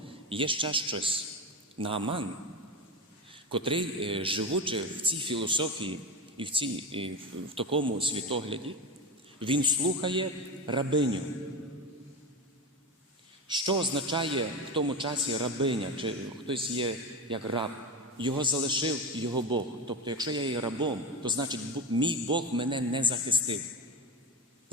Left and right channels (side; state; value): both; normal; correlation 0.19